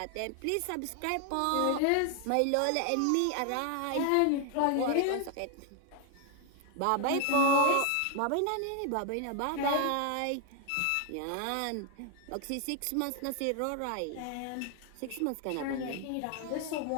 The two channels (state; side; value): different; both; correlation 0.00